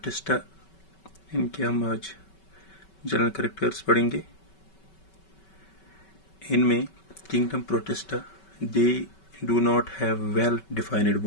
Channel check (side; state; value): right; late; 5.3 ms